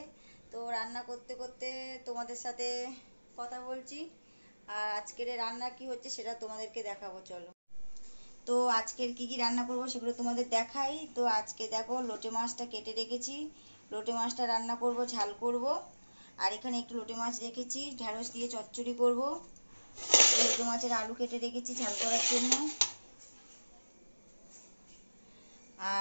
তো রান্না করতে করতে তোমাদের সাথে কথা বলছি। আর আজকের রান্না কি হচ্ছে সেটা তোমাদেরকে দেখাবো, চলো। তো আজকের কি কি রান্না করব সেগুলো তোমাদের দেখাই। তো আজকে দেখো, লোটে মাছটা কেটে রেখেছি। লোটে মাছটা রান্না করব, ঝাল করব। আর এখানে একটু লোটে মাছ রেখেছি, ঢ্যাঁড়স দিয়ে চচ্চড়ি করব। লোটে মাছের আলু কেটে রেখেছি ঝাল করার জন্য।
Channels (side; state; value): both; inverted; correlation -1.00